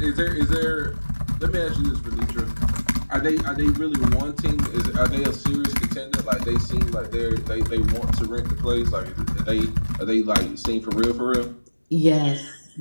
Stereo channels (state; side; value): inverted; both; correlation -1.00